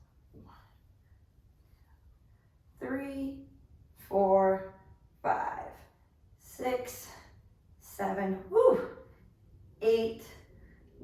3, 4, 5, 6, 7, 8,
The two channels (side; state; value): both; identical; correlation 1.00